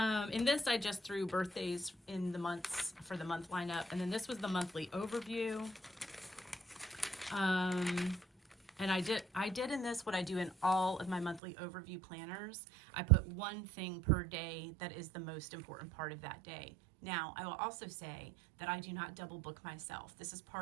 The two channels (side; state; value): left; drops out; at 11.4 s